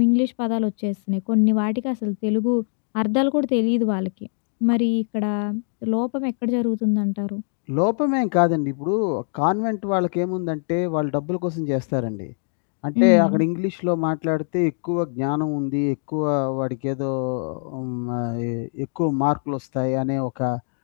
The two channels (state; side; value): silent; right; digital silence